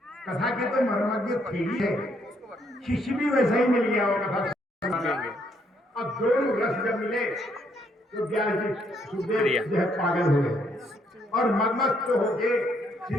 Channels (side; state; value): both; normal; correlation 0.71